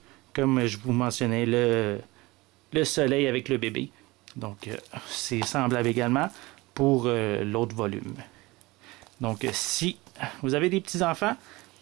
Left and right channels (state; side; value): quieter; left; 21.7 dB